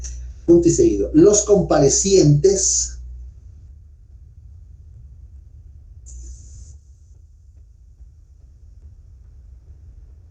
Punto y seguido. Los comparecientes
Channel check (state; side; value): identical; both; correlation 1.00